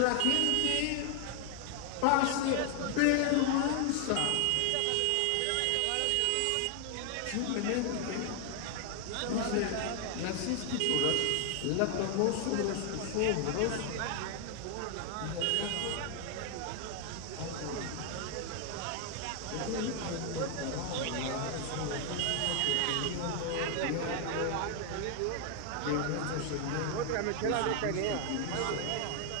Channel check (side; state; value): both; different; correlation 0.00